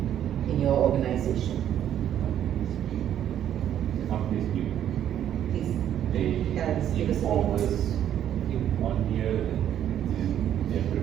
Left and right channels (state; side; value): quieter; left; 10.5 dB